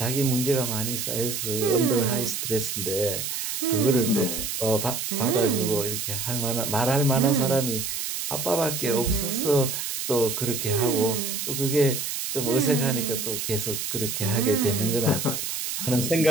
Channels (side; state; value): right; noise; hiss, 3 dB below the sound